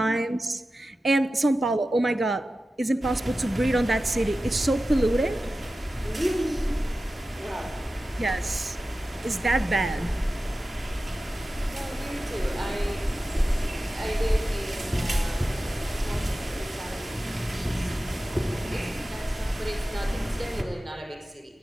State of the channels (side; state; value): both; normal; correlation 0.94